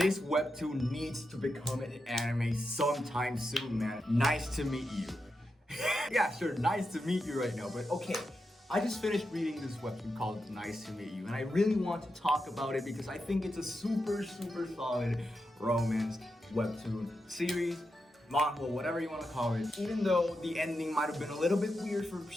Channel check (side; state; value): both; normal; correlation 0.87